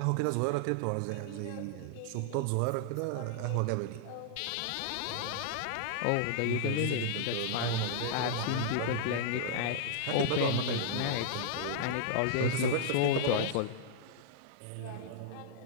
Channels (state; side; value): different; both; correlation -0.01